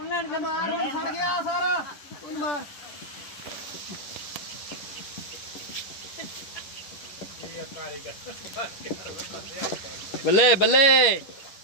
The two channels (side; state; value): right; late; 10 ms